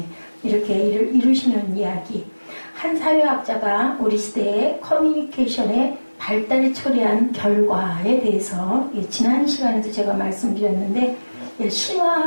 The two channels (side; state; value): both; inverted; correlation -1.00